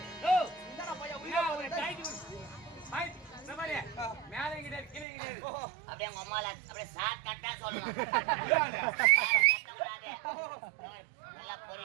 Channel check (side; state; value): left; drops out; at 5.1 s